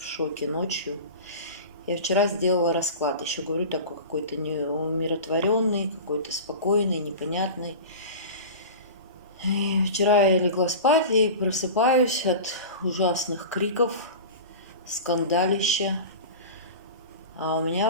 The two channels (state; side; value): inverted; both; correlation -0.32